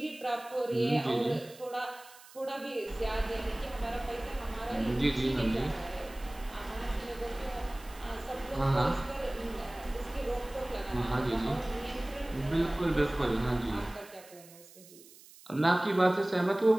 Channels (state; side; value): noise; right; hiss, 21 dB below the sound